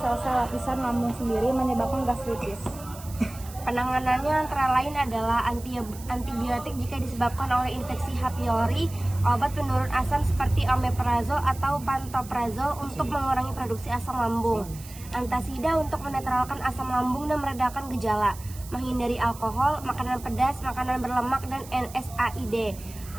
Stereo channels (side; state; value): right; noise; hiss, 17 dB below the sound